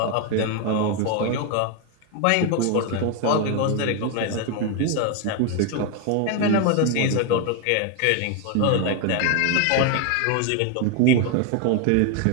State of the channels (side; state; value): both; different; correlation 0.01